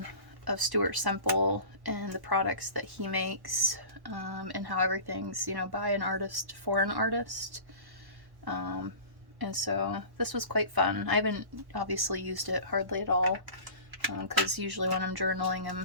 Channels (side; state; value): left; late; 1.1 ms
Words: of Stuart Semple and the products that he makes, and how everything's, you know, by an artist for an artist. And so this was quite fun. I haven't obviously used it hardly at all, because usually when I'm